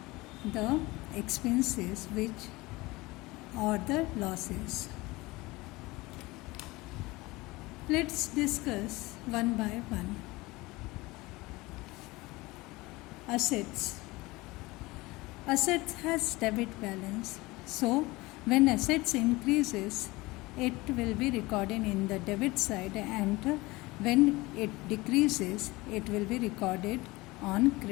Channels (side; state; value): right; quieter; 21.6 dB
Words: the expenses, which are the losses. Let's discuss one by one. Assets. Assets has debit balance. So when assets increases, it will be recorded in the debit side, and when it decreases, it will be recorded on